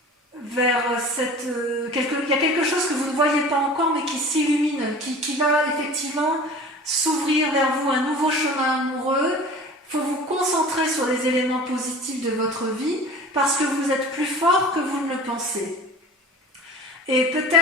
cette... il y a quelque chose que vous ne voyez pas encore, mais qui s'illumine, qui va effectivement s'ouvrir vers vous, un nouveau chemin amoureux. Il faut vous concentrer sur les éléments positifs de votre vie, parce que vous êtes plus fort que vous ne le pensez. Et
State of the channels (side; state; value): both; normal; correlation 0.41